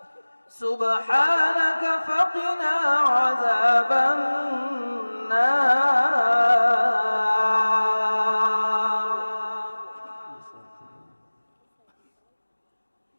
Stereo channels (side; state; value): both; inverted; correlation -1.00